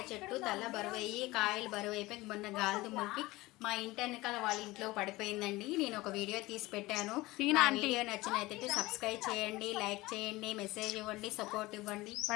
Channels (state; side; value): quieter; right; 20.0 dB